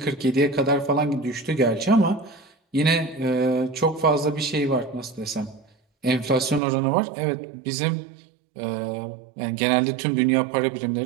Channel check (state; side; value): drops out; left; at 6.6 s